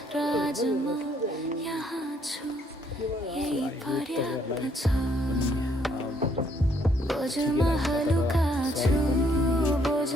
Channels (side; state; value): both; normal; correlation 0.68